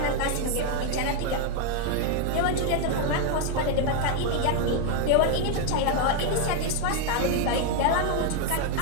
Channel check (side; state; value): both; different; correlation 0.01